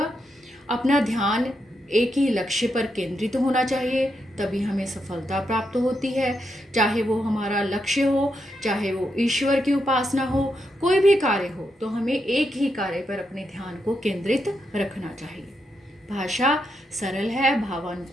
अपना ध्यान एक ही लक्ष्य पर केंद्रित होना चाहिए, तभी हमें सफलता प्राप्त होती है। चाहे वो हमारा लक्ष्य हो, चाहे वो ईश्वर की उपासना हो, कोई भी कार्य हो, तो हमें एक ही कार्य पर अपने ध्यान को केंद्रित रखना चाहिए। भाषा सरल है,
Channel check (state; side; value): normal; both; correlation 0.82